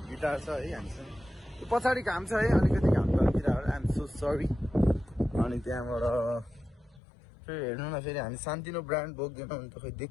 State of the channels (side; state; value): right; drops out; at 7.0 s